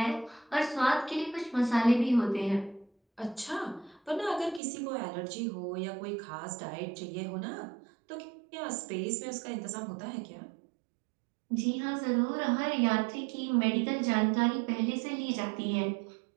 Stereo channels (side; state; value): left; drops out; at 4.6 s